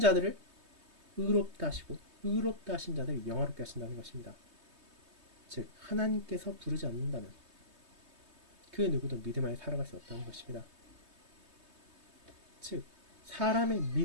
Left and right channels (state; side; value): late; left; 3.2 ms